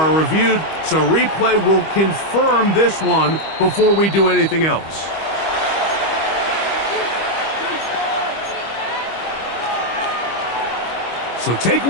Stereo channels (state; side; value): late; right; 25 ms